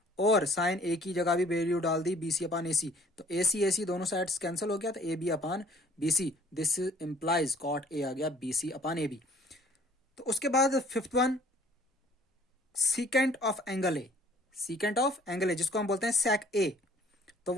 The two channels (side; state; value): both; normal; correlation 0.56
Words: और साइन ए की जगह भी वैल्यू डाल दी BC अपान AC। तो AC दोनों साइड्स कैंसिल हो गया, तो AB upon BC। This implies cot A आ गया BC अपान AB। तो उसके बाद fifth one, secant of angle A. Secant of angle A जिसको हम बोलते हैं सेक ए, तो